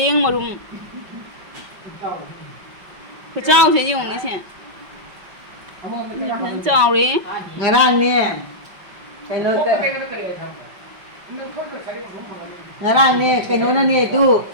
marum. Kecau sih yung ni sih. Kecau ni. Ngarang ni. Keno ke. Ngarang ni keno na ni tu.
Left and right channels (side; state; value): left; late; 5.2 ms